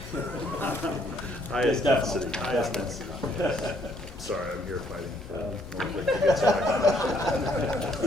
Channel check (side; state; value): both; normal; correlation 0.67